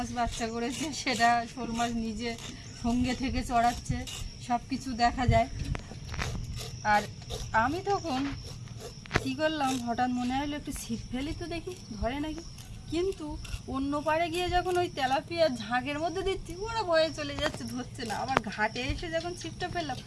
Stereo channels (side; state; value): both; identical; correlation 1.00